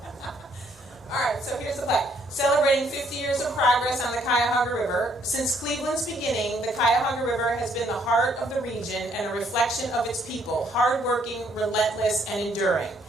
All right, so here's the plaque. Celebrating 50 years of progress on the Cuyahoga River. Since Cleveland's beginning, the Cuyahoga River has been the heart of the region and a reflection of its people, hardworking, relentless, and enduring.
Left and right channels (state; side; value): normal; both; correlation 0.67